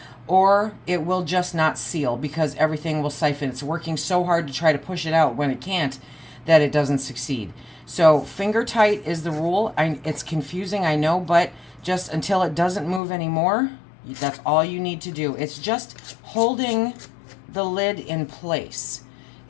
or it will just not seal, because everything will siphon. It's working so hard to try to push it out when it can't that it doesn't succeed. So finger tight is the rule. It's confusing, I know, but just until it doesn't move anymore, that's all you need to do. It's just holding the lid in place.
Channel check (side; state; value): right; drops out; at 13.0 s